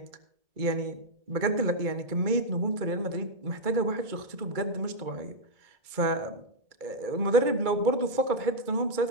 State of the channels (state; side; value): late; left; 2.2 ms